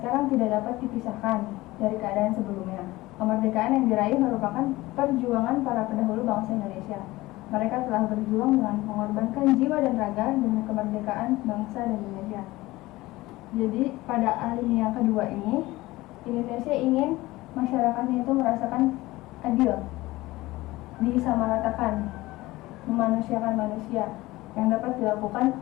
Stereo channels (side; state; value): right; quieter; 19.1 dB